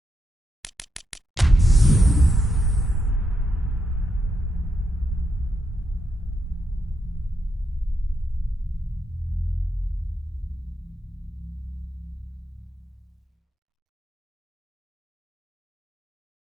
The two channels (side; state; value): both; normal; correlation 0.82